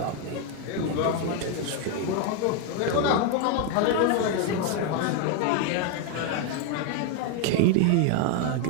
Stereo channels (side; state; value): both; different; correlation 0.01